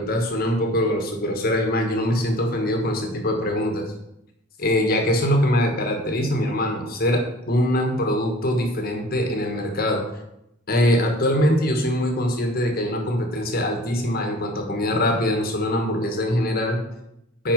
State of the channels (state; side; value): normal; both; correlation 0.45